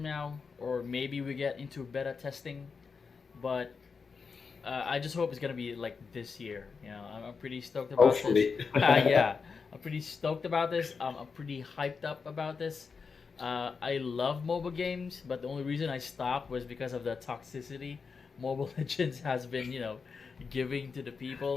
now, or maybe we get into beta testing, but I just hope it's gonna be like this year. You know, I'm pretty stoked about this. Hopefully. Yeah, I'm pretty stoked about this. I'm pretty hyped up about this. I love mobile games, but the only reason I stopped was because of the toxicity Mobile Legends has been, you know, giving to the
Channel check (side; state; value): right; quieter; 5.3 dB